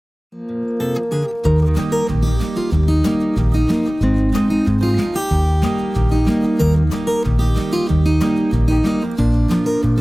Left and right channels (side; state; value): both; normal; correlation 0.98